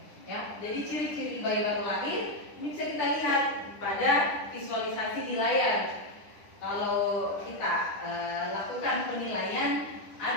ya. Jadi ciri-ciri bayi baru lahir ini bisa kita lihat pada visualisasi di layar. Kalau kita lakukan penilaian,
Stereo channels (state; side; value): late; right; 10 ms